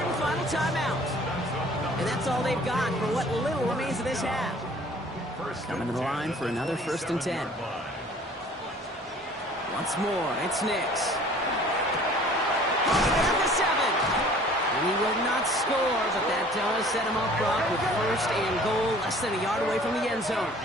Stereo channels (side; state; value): both; normal; correlation 0.51